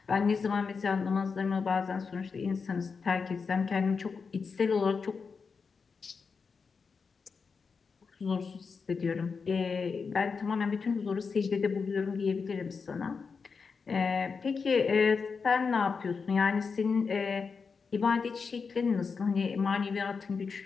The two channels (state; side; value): quieter; right; 5.2 dB